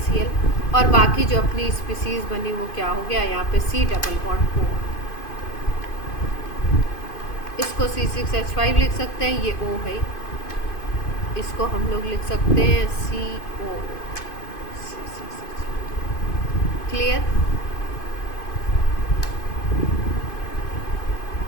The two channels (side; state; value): right; late; 2.5 ms